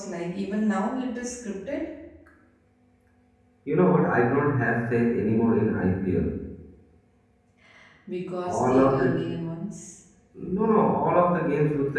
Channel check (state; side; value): identical; both; correlation 1.00